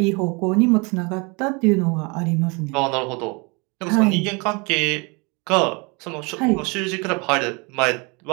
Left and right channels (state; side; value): quieter; left; 29.6 dB